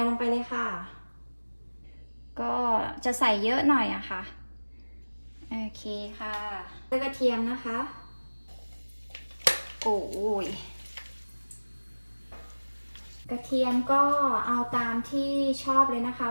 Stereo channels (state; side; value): inverted; both; correlation -1.00